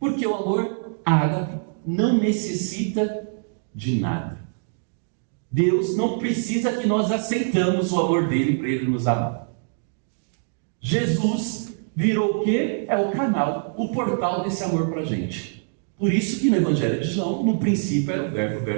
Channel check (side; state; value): left; silent; digital silence